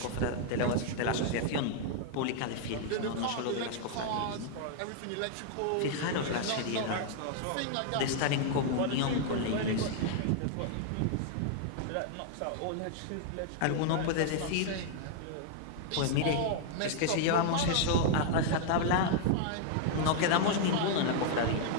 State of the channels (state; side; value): different; both; correlation 0.00